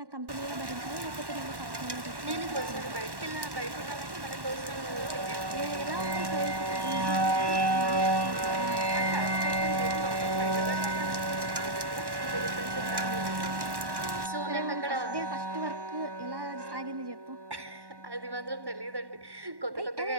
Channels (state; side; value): late; left; 1.1 ms